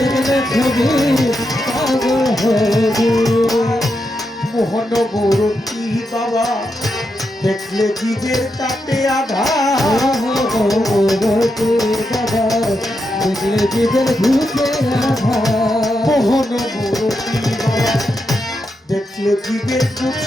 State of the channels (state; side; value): normal; both; correlation 0.85